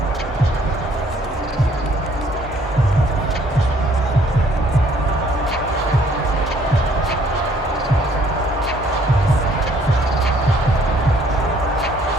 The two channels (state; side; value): normal; both; correlation 0.62